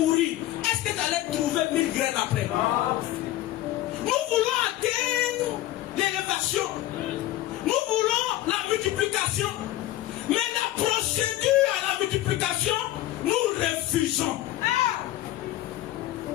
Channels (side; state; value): right; quieter; 15.0 dB